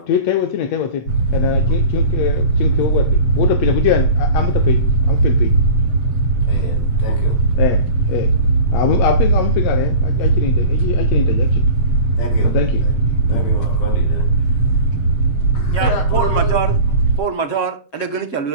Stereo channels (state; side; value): late; right; 7.5 ms